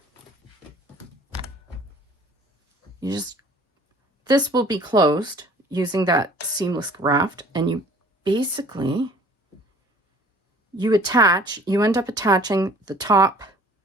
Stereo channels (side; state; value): both; normal; correlation 0.51